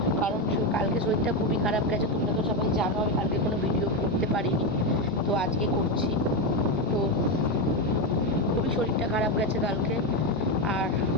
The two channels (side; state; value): both; normal; correlation 0.10